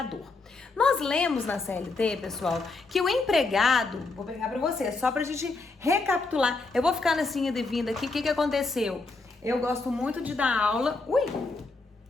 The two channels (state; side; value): quieter; right; 3.6 dB